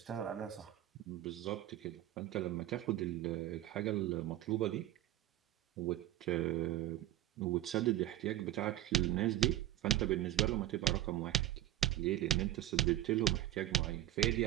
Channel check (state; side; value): quieter; left; 13.6 dB